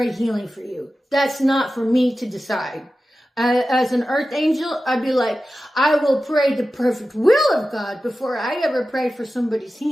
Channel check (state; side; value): normal; both; correlation 0.94